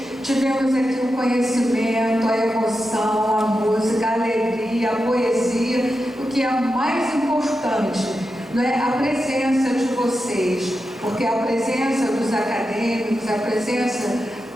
Tivemos aqui o conhecimento, a emoção, a música, a alegria, a poesia, o que é mais importante, não é? A presença de vocês, porque a presença dos acadêmicos, a presença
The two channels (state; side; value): normal; both; correlation 0.89